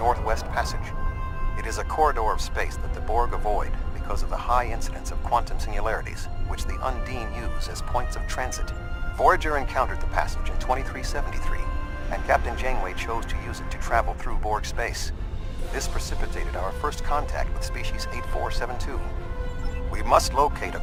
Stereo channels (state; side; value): identical; both; correlation 1.00